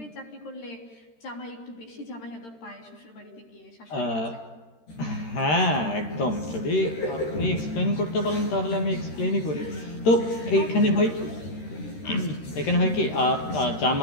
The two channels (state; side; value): late; right; 13 ms